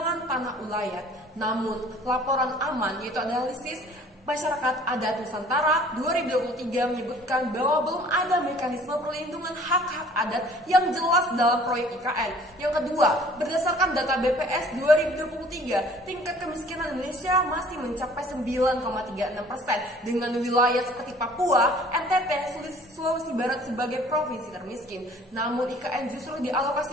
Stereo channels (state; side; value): normal; both; correlation 0.52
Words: tanah ulayat. Namun, laporan aman yaitu analisis Masyarakat Adat Nusantara 2023 menyebutkan bahwa belum ada mekanisme perlindungan hak-hak adat yang jelas dalam proyek IKN. Yang kedua, berdasarkan data BPS 2023, tingkat kemiskinan Indonesia masih mencapai 9,36% dengan wilayah seperti Papua, NTT, Sulawesi Barat sebagai provinsi termiskin. Namun IKN justru